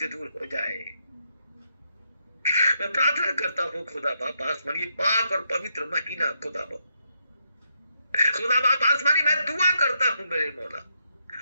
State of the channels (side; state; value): both; inverted; correlation -0.79